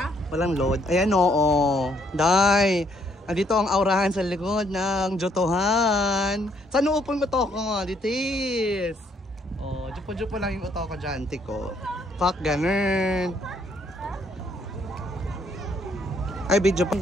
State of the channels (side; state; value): both; normal; correlation 0.69